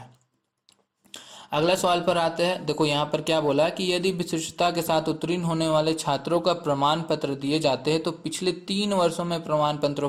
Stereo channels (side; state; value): both; identical; correlation 1.00